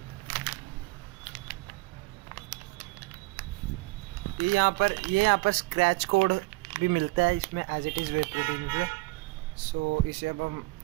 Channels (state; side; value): quieter; left; 23.4 dB